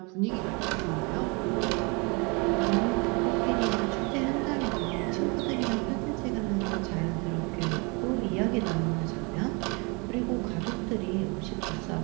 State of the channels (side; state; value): left; quieter; 30.4 dB